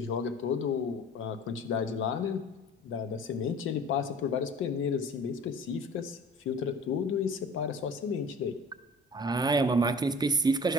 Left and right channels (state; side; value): normal; both; correlation 0.45